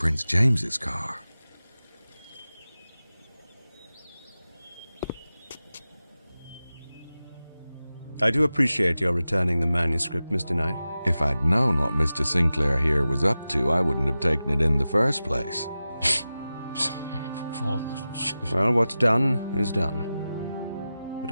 James's car. I do appreciate your returning the manuscript, Mr. Knight. If I'd known what Mr. Sinclair here was up to, I wouldn't have taken it in the first place. Well, what's done is done. But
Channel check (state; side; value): inverted; both; correlation -0.94